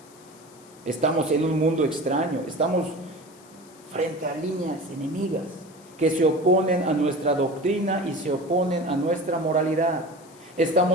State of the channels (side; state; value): left; noise; hiss, 25 dB below the sound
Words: Estamos en un mundo extraño, estamos frente a líneas enemigas que se oponen a nuestra doctrina y se oponen a nuestra moralidad.